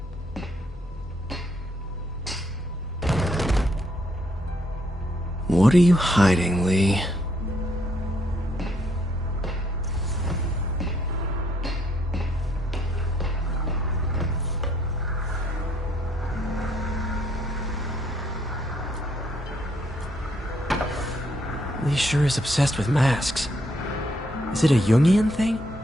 What are you hiding, Lee? Lee sure is obsessed with masks. Is it a Jungian thing?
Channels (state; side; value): normal; both; correlation 0.71